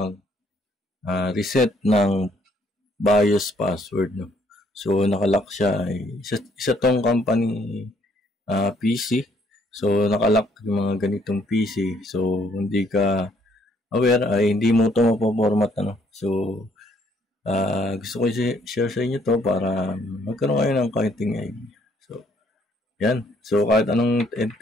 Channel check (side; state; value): both; normal; correlation 0.66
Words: ng BIOS password. No? So nakalock siya, isa tong company PC. So nakalock yung mga ganitong PC. So hindi ka aware ay hindi mo ito mapoformat. So gusto ko i-share sa inyo to para magkaroon kayo ng kaunting idea. Yan. So, kahit anong